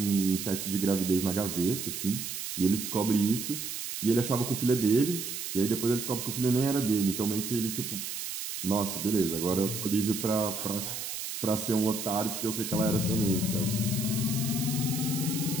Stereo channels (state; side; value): noise; right; hiss, 5 dB below the sound